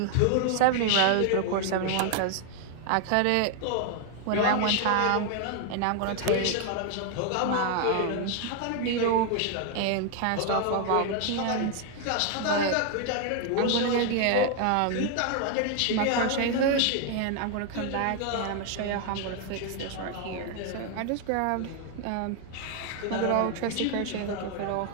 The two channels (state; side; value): different; both; correlation 0.00